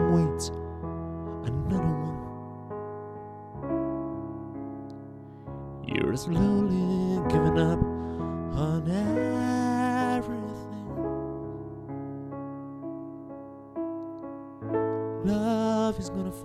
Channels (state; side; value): identical; both; correlation 1.00